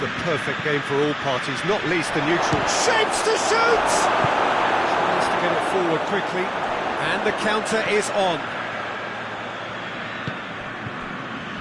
perfect game for all parties, not least the neutral. Shapes to shoot! Tries to get it forward quickly, and the counter is on.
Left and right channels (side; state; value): both; identical; correlation 1.00